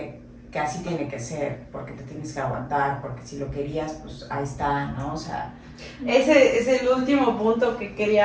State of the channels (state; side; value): identical; both; correlation 1.00